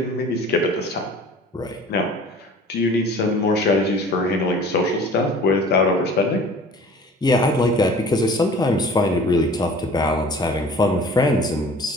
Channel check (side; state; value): both; normal; correlation 0.46